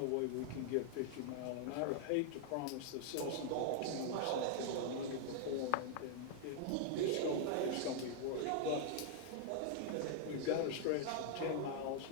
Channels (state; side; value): different; both; correlation 0.00